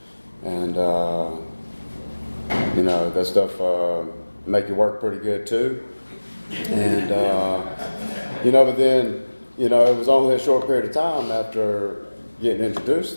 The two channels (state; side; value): inverted; both; correlation -1.00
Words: and that stuff make you work pretty good too. And but then it was only a short period of time after getting introduced